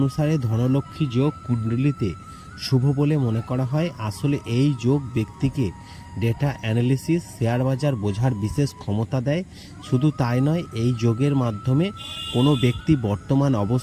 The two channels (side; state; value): both; identical; correlation 1.00